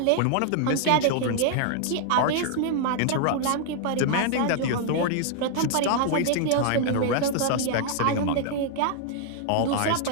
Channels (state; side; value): different; both; correlation -0.01